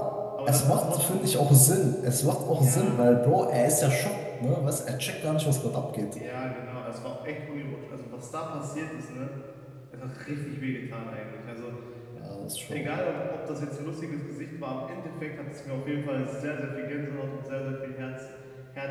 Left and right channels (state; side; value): identical; both; correlation 1.00